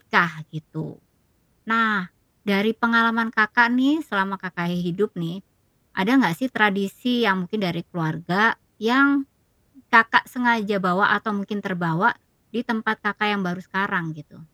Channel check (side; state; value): both; identical; correlation 1.00